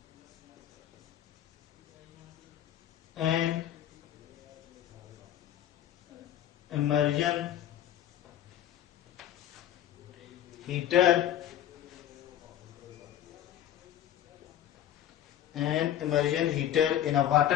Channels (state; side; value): quieter; right; 11.5 dB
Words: an immersion heater in a